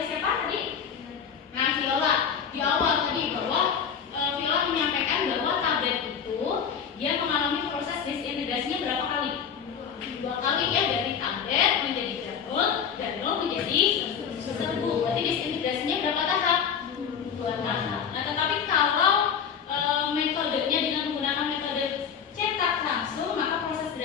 siapa tadi? Nah, Viola di awal tadi bahwa Viola menyampaikan bahwa tablet itu dia mengalami proses disintegrasinya berapa kali? 2 kali ya, dari tablet menjadi granul menjadi serbuk. Berarti disintegrasinya berapa tahap? 2 tahap. Nah, tetapi kalau metodenya dengan menggunakan metode cetak langsung, maka proses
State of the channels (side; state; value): right; quieter; 7.4 dB